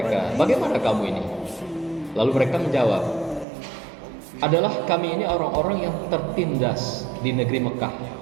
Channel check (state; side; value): drops out; left; at 3.5 s